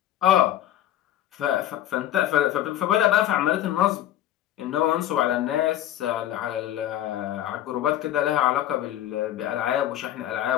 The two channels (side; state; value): right; quieter; 12.2 dB